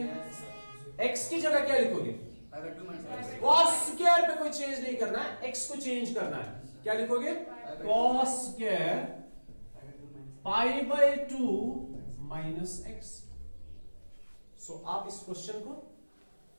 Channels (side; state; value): both; inverted; correlation -1.00